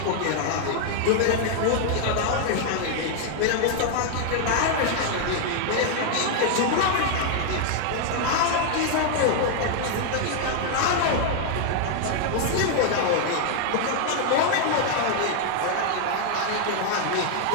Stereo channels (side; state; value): both; different; correlation 0.00